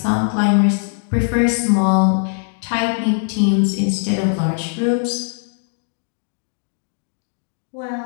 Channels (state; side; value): silent; right; 66 dB below the other